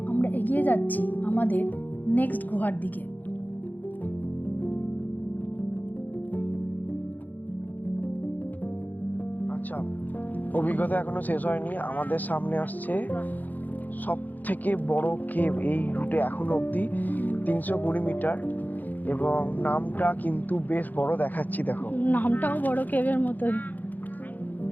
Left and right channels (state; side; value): late; right; 0.084 ms